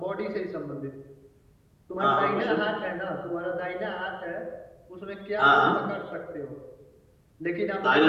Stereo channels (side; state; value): both; identical; correlation 1.00